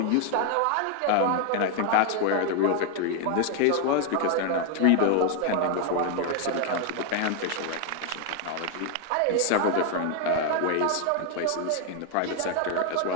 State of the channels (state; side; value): different; both; correlation 0.00